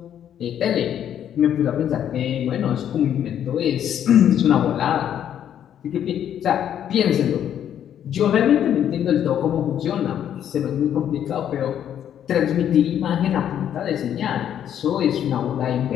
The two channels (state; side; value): quieter; right; 9.9 dB